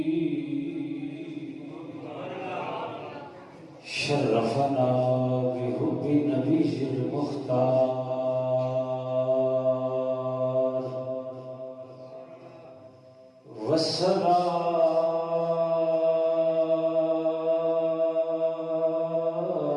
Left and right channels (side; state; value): both; identical; correlation 1.00